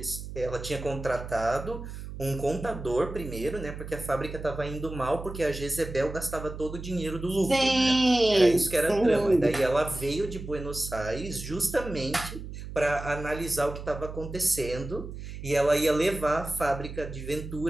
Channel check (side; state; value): right; noise; hum, 10 dB below the sound